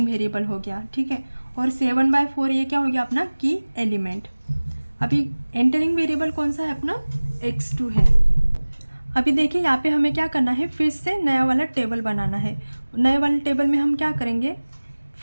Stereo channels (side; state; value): both; inverted; correlation -1.00